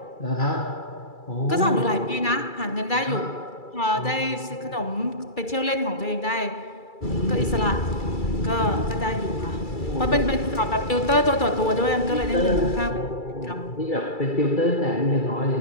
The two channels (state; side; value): late; right; 2.3 ms